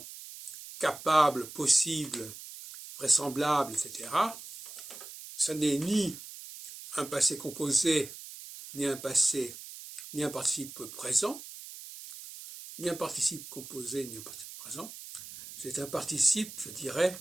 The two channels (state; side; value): noise; right; hiss, 13 dB below the sound